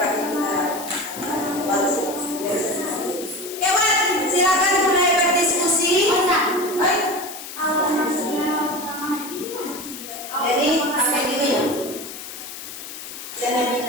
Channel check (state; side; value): noise; left; hiss, 11 dB below the sound